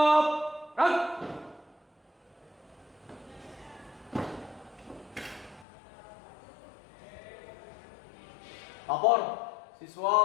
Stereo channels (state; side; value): drops out; right; at 5.7 s